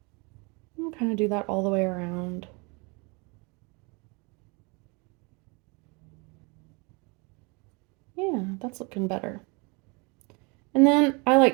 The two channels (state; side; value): quieter; left; 30.1 dB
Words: I'll kind of do that all the way around. Yeah, that's looking better. And then I